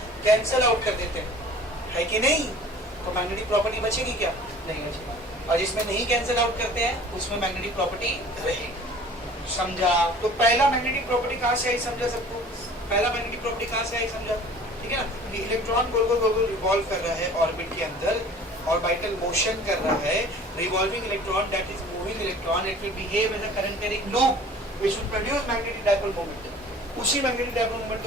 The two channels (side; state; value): both; normal; correlation 0.46